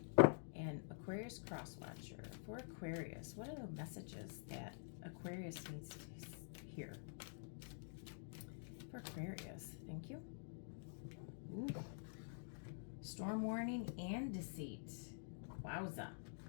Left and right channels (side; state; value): right; silent; digital silence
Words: and Aquarius Cross Watcher. For Aquarius, what are the messages that Aquarius needs to hear? For Aquarius, thank you. Ooh. Storm warning and deceit. Wowza.